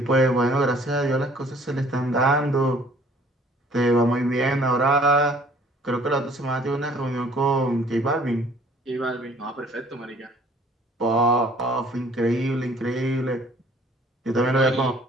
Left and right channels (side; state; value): both; normal; correlation 0.56